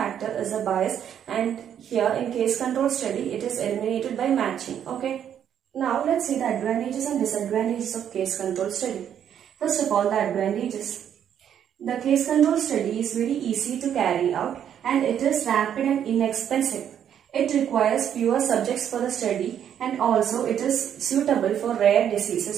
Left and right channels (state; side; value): quieter; left; 9.3 dB